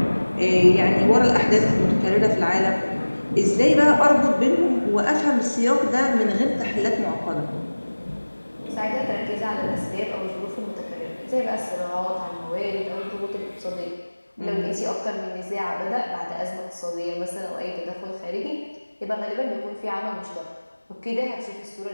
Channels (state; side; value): inverted; both; correlation -1.00